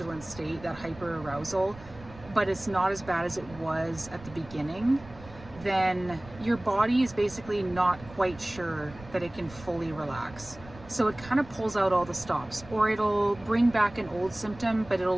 state, that hyperarousal, but it's not as bad as it was at the beginning, then your body is basically not quite sure that it can fully relax. So it kind of pulls out all the stops, or it'll bring back an old symptom, but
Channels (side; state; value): right; noise; rumble, 18 dB below the sound